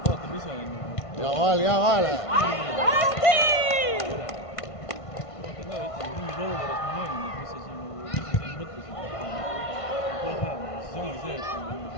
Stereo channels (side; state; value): right; late; 1.5 ms